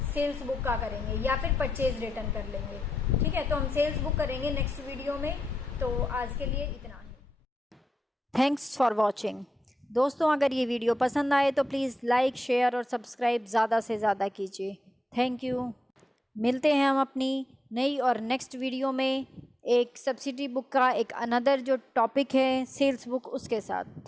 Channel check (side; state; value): both; normal; correlation 0.87